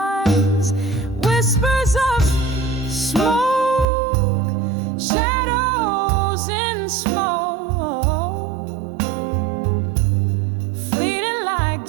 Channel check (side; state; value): left; drops out; at 3.9 s